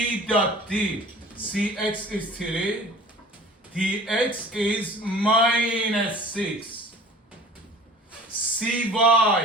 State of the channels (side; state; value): both; normal; correlation 0.45